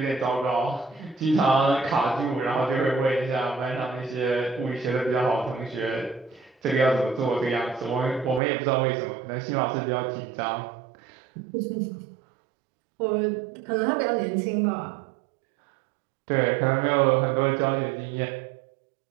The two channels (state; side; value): drops out; left; at 8.4 s